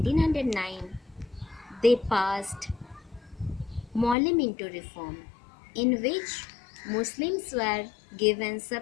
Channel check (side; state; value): right; drops out; at 4.2 s